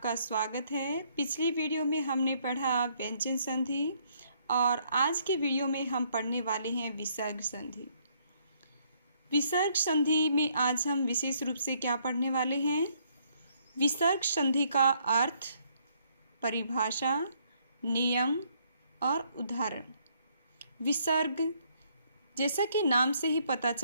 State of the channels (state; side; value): inverted; both; correlation -0.69